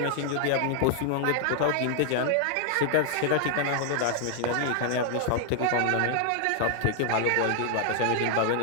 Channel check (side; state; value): both; different; correlation 0.00